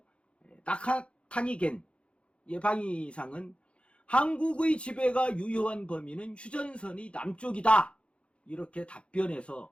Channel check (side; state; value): right; late; 0.059 ms